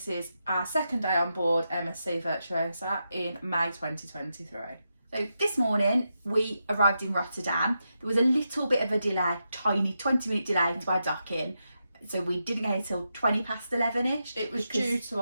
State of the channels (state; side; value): inverted; both; correlation -0.86